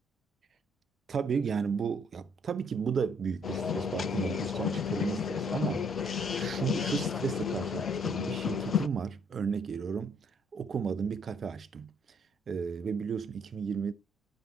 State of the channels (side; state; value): both; normal; correlation 0.66